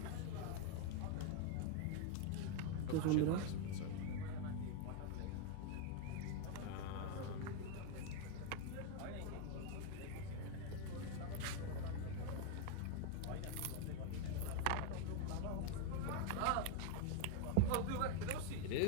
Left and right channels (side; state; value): both; different; correlation 0.01